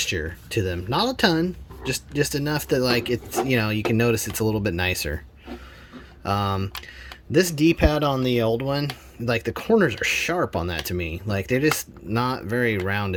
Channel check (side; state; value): both; identical; correlation 1.00